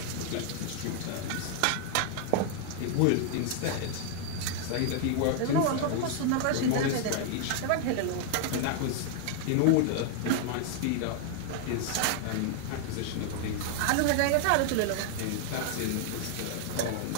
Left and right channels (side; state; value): both; different; correlation 0.00